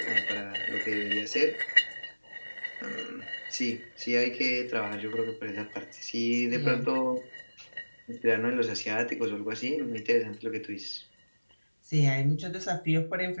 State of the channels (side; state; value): both; inverted; correlation -1.00